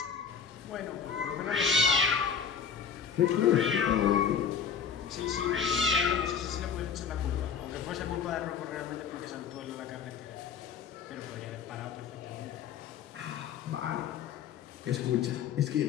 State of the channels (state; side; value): quieter; right; 7.0 dB